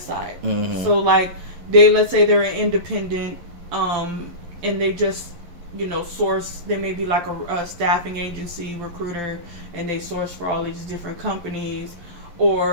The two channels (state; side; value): late; left; 12 ms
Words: side. Mm-hmm. So like let's say they're an independent, and they just, source, they may be like a staffing agency recruiter, and they source for all these different companies,